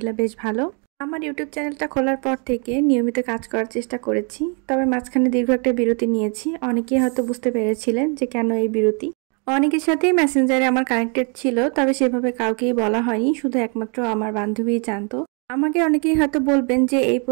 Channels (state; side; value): quieter; left; 36.7 dB